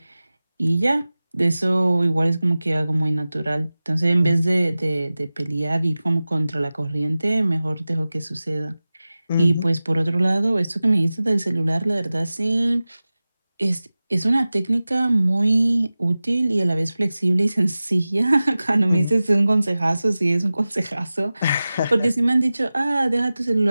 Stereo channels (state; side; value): inverted; both; correlation -0.97